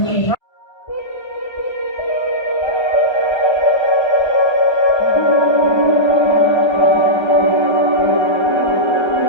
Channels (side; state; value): right; late; 1.3 ms